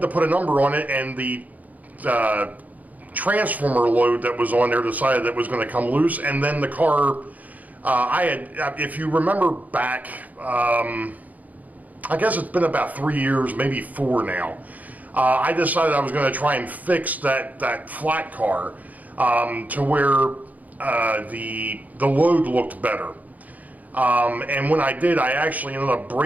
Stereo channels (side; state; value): left; late; 0.078 ms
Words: to put a number on it, and the transformer load that was on there decided that it was going to come loose, and then the car, if you remember back, I guess it's been about 3 years, maybe 4 now. I decided I was going to try and fix that flat car to where the load looked better. And when I did, I actually ended up